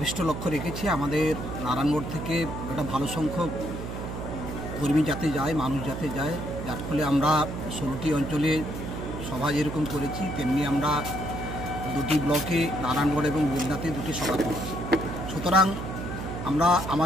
লক্ষ্য রেখেছি আমাদের নারায়ণগড় থেকে একটা ভালো সংখ্যক কর্মী যাতে যায়, মানুষ যাতে যায়, যার ফলে আমরা 16টি অঞ্চলে সভা যেরকম করেছি তেমনি আমরা 2টি ব্লকে নারায়ণগড় এবং বেলদাতে 2টি সভা করেছি। সুতরাং আমরা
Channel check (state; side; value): noise; right; hum, 7 dB below the sound